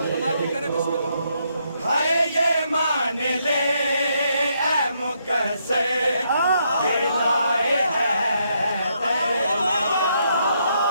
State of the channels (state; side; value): inverted; both; correlation -0.76